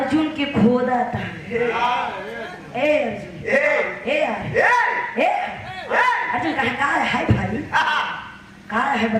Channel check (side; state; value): both; identical; correlation 1.00